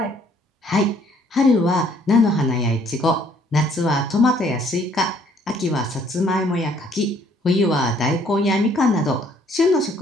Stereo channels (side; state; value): both; normal; correlation 0.63